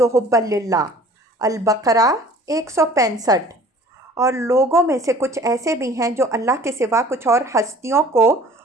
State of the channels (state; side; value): normal; both; correlation 0.49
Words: حُبًّا لِلَّهِ۔ البقرہ 165۔ اور لوگوں میں سے کچھ ایسے بھی ہیں جو اللہ کے سوا کچھ اور ہستیوں کو